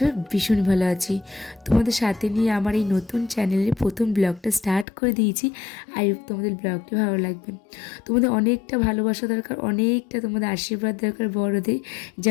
ভীষণ ভালো আছি। তোমাদের সাথে নিয়ে আমার এই নতুন চ্যানেলের প্রথম ব্লগটা স্টার্ট করে দিয়েছি। আই হোপ তোমাদের ব্লগটি ভালো লাগবে। তোমাদের অনেকটা ভালোবাসা দরকার, অনেকটা তোমাদের আশীর্বাদ দরকার বড়দের,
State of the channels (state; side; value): drops out; right; at 4.9 s